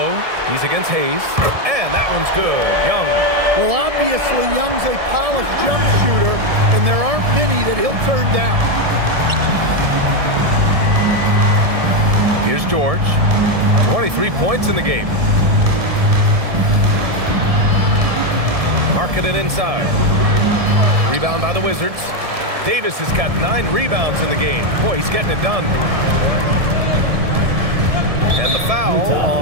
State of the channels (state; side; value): late; left; 1.7 ms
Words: He's against Hayes. And that one's good. Young. Well, obviously, Young's a polished jump shooter, and there aren't many that he'll turn down. Here's George. 23 points in the game. Markkanen inside. Rebound by the Wizards. Davis has got 9 rebounds in the game. Boy, he's getting it done. And the foul